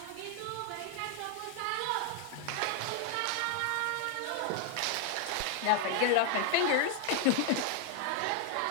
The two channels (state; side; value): different; both; correlation 0.00